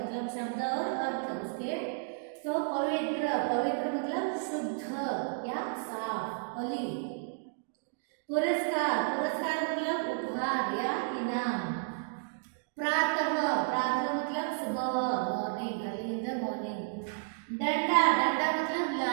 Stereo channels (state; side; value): silent; left; digital silence